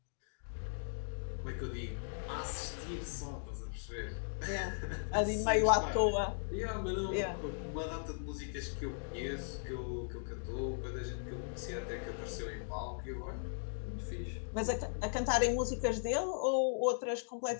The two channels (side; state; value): right; silent; digital silence